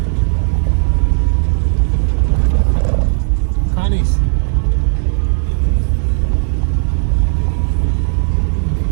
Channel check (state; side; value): silent; left; 56 dB below the other